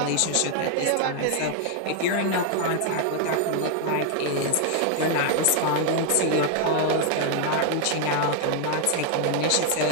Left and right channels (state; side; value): different; both; correlation 0.00